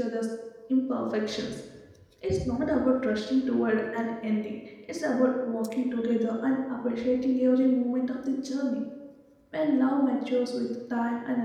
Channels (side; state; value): both; identical; correlation 1.00